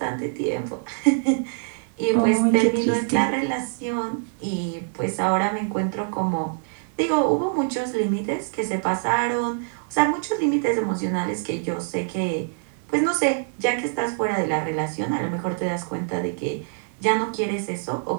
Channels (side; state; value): left; silent; digital silence